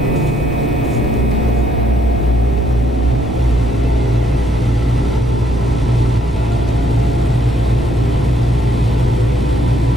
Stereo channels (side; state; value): both; normal; correlation 0.71